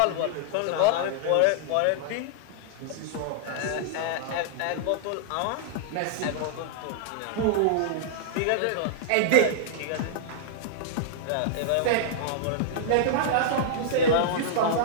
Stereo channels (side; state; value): both; different; correlation -0.02